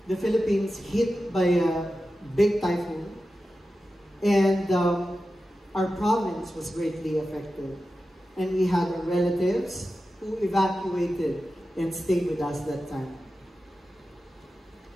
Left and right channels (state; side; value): normal; both; correlation 0.93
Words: the Philippines hit by a big typhoon, and our province was greatly affected. And we had our relatives who evacuated and stayed with us that time.